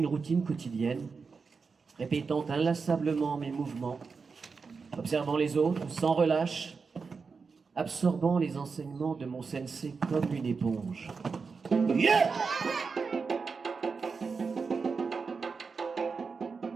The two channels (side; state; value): left; quieter; 5.0 dB